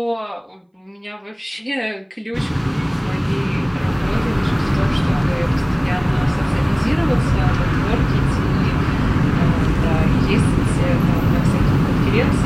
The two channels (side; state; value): both; identical; correlation 1.00